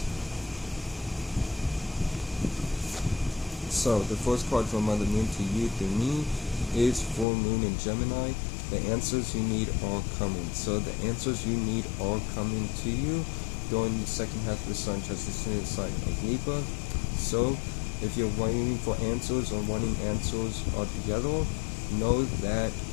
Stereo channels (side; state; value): right; drops out; at 7.2 s